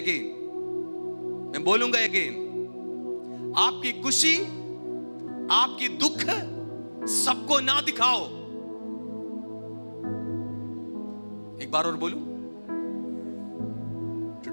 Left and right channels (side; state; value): both; inverted; correlation -1.00